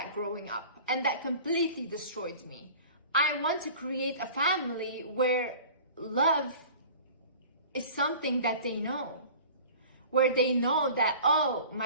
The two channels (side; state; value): both; inverted; correlation -0.43